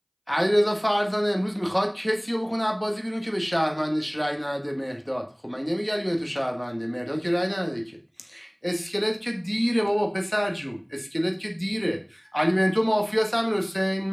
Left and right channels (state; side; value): identical; both; correlation 1.00